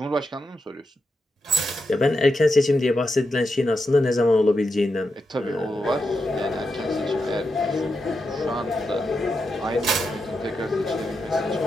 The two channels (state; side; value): normal; both; correlation 0.86